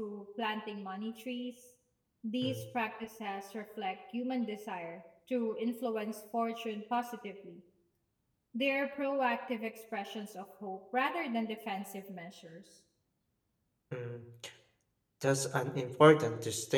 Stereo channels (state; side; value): identical; both; correlation 1.00